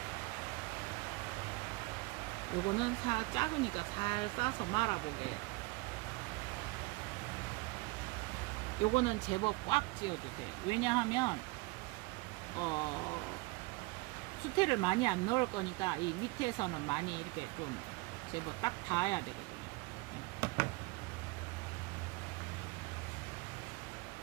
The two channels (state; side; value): quieter; left; 24.7 dB